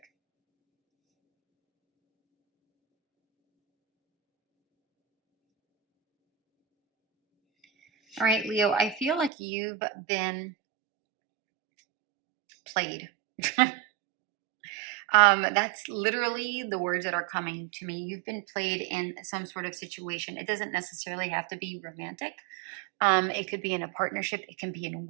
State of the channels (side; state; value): left; drops out; at 9.3 s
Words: All right, Leo, I feel like you've been played. That's literally the words that are coming to me. You've been played in some sort of situation. It doesn't necessarily have to be romantic. It could be in a partnership. It can be in